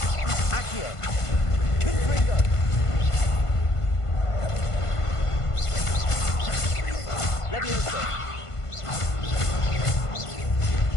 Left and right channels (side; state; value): right; late; 1.5 ms